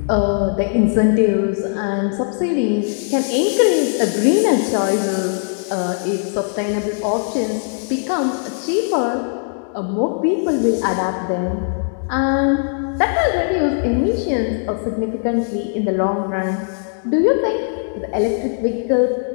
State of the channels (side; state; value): right; silent; digital silence